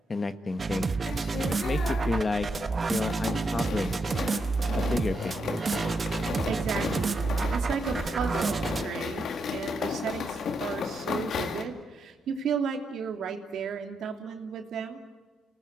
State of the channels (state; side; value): normal; both; correlation 0.81